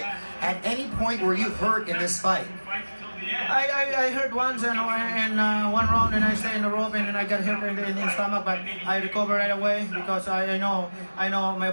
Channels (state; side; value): inverted; both; correlation -1.00